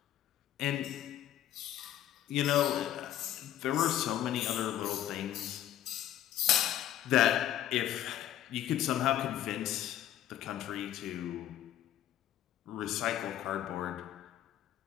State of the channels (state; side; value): quieter; right; 11.9 dB